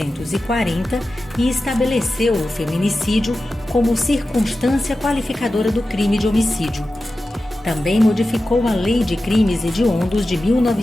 e estabeleceu o feminicídio como circunstância qualificadora do crime de homicídio. Também modificou a Lei de Crimes Hediondos de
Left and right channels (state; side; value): normal; both; correlation 0.94